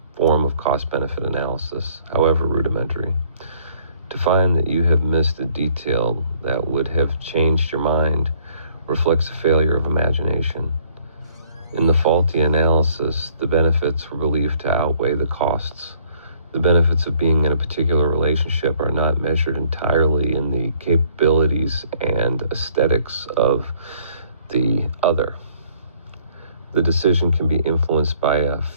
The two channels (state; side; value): inverted; both; correlation -0.61